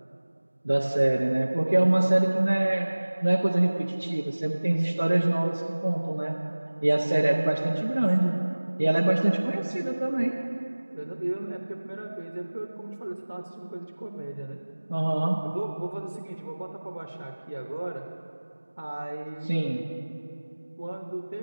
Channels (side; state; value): both; inverted; correlation -1.00